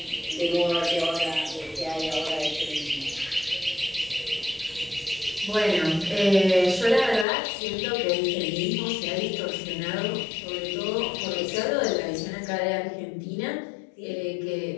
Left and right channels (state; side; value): drops out; right; at 7.2 s